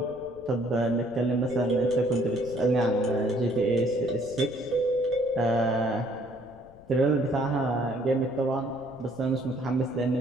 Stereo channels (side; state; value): left; noise; rumble, 24 dB below the sound